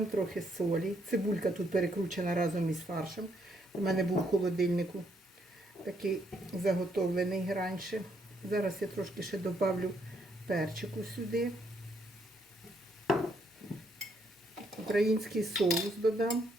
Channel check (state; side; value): normal; both; correlation 0.73